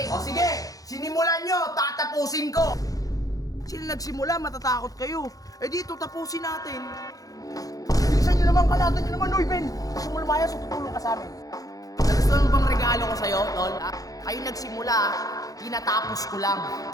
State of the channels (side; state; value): right; late; 0.17 ms